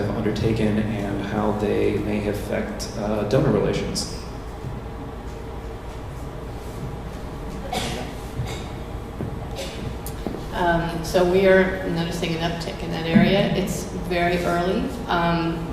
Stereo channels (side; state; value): both; identical; correlation 1.00